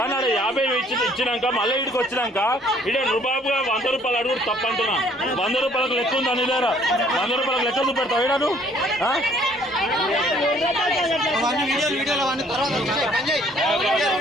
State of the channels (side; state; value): both; normal; correlation 0.60